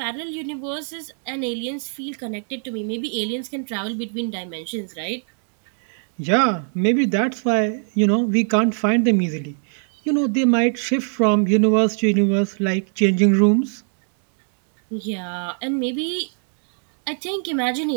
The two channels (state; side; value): silent; left; 60 dB below the other